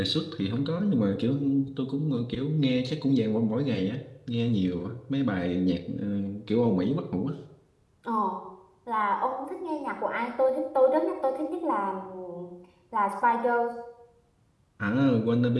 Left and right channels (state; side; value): identical; both; correlation 1.00